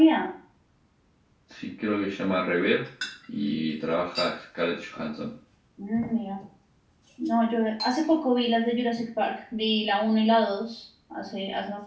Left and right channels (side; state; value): both; identical; correlation 1.00